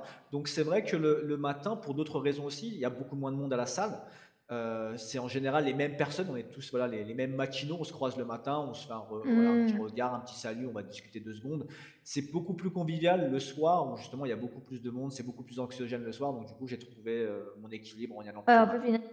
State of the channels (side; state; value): both; identical; correlation 1.00